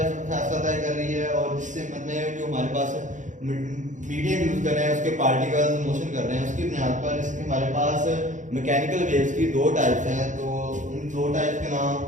तय कर रही है और जिस सिमत में जो हमारे पास मीडियम यूज कर रहे हैं उसके पार्टिकल्स मोशन कर रहे हैं, उसकी बुनियाद पर इसके हमारे पास मैकेनिकल वेव्स की दो टाइप्स हैं। तो उन दो टाइप्स के नाम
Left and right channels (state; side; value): late; left; 0.36 ms